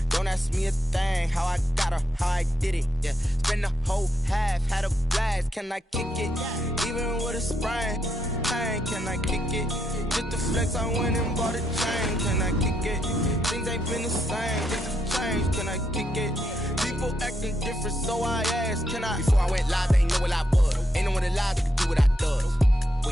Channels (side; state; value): both; normal; correlation 0.79